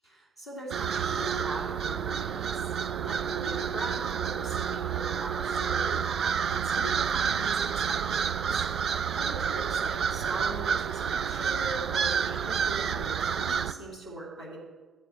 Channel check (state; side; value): quieter; left; 6.4 dB